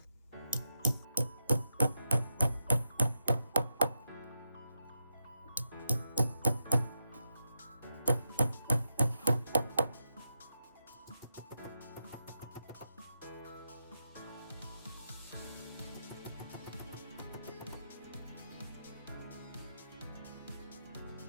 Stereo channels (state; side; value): inverted; both; correlation -0.86